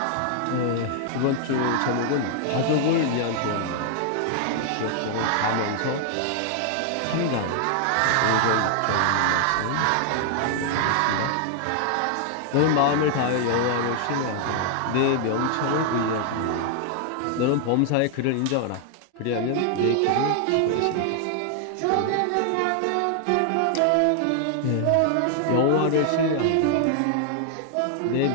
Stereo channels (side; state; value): both; different; correlation 0.00